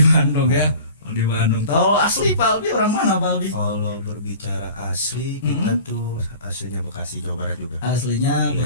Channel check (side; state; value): both; inverted; correlation -0.42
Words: Bandung ya. Di Bandung. Tahu asli Pak Albi orang mana Pak Albi? Kalau berbicara asli, kita tuh aslinya Bekasi, Jawa Barat juga. Aslinya